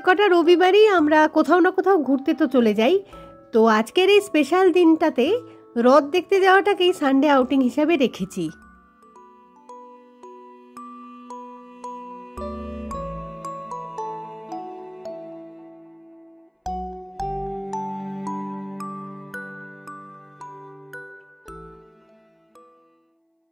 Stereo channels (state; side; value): identical; both; correlation 1.00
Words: কটা রবিবারই আমরা কোথাও না কোথাও ঘুরতে তো চলে যাই। তো আজকের এই স্পেশাল দিনটাতে রথ দেখতে যাওয়াটাকেই সানডে আউটিং হিসাবে রেখেছি।